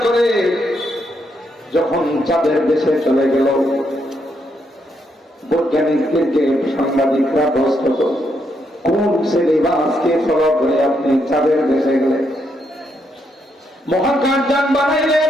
করে যখন চাঁদের দেশে চলে গেল বৈজ্ঞানিকদেরকে সাংবাদিকরা প্রশ্ন করল কোন সিলেবাসকে ফলো করে আপনি চাঁদের দেশে গেলেন মহাকাশযান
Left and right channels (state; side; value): normal; both; correlation 0.78